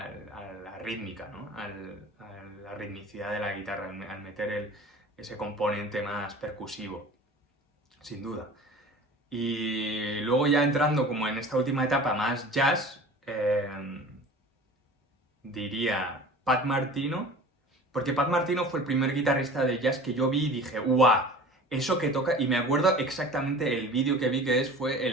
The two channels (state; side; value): normal; both; correlation 0.41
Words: rítmica, ¿no? A la ritmicidad de la guitarra, al meter ese componente más percusivo, sin duda. Y luego ya entrando como en esta última etapa más jazz, diría Pat Martino, porque Pat Martino fue el primer guitarrista de jazz que yo vi y dije, ¡guau! Eso que toca, y me acuerdo exactamente el vídeo que vi fue